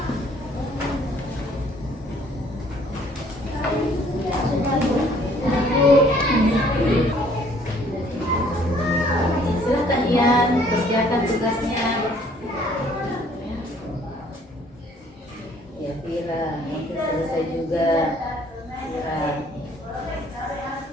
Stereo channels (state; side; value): normal; both; correlation 0.60